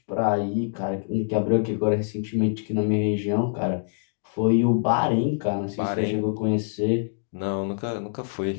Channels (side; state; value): right; silent; digital silence